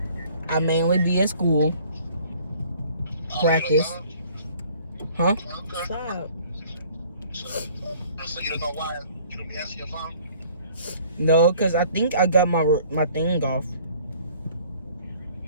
I mainly be at school. Practice. Huh? Okay. Stop. So you don't know why you don't be answering your phone? No, because I think I got my thing off.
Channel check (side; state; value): both; inverted; correlation -0.55